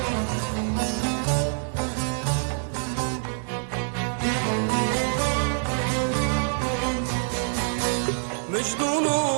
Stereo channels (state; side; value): silent; left; digital silence